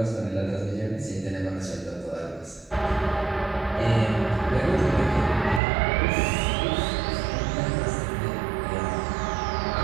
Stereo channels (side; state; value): left; drops out; at 5.6 s